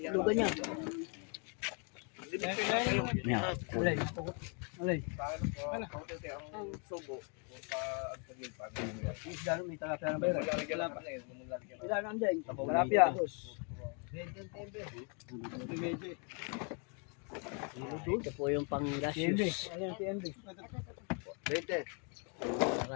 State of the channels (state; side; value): quieter; right; 37.7 dB